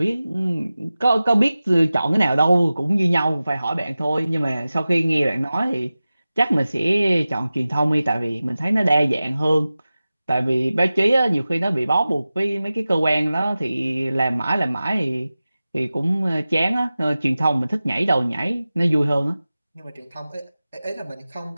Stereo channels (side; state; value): both; inverted; correlation -0.96